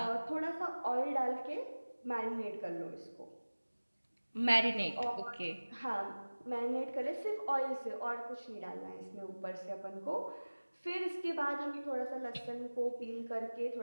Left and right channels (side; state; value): both; inverted; correlation -1.00